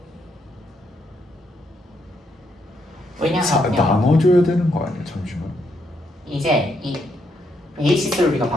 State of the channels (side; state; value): both; normal; correlation 0.76